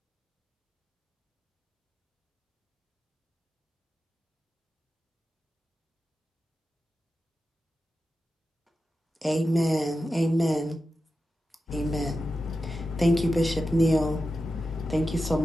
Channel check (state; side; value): normal; both; correlation 0.92